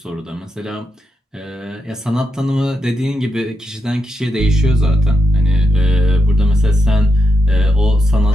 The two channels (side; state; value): both; normal; correlation 0.85